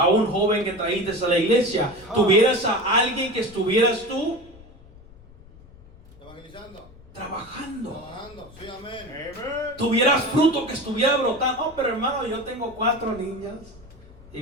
un joven que traíste a la iglesia, tuvieras a alguien que estuvieras tú Evangelizando. trabajando. Trabajando. Sí, amén. Tuvieras fruto que estuviera brotando. Oh, pero hermano, yo tengo 4 niñas y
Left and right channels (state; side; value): noise; left; rumble, 22 dB below the sound